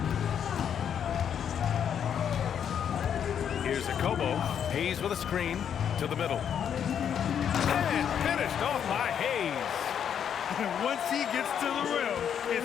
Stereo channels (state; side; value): quieter; right; 8.5 dB